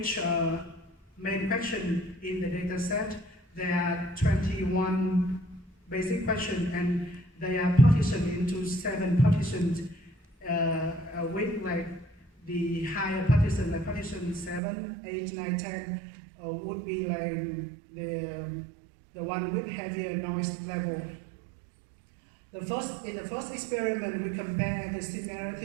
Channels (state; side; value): drops out; left; at 14.6 s